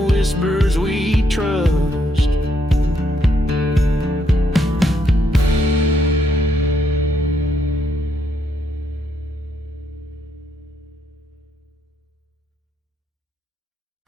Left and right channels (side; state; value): both; normal; correlation 0.75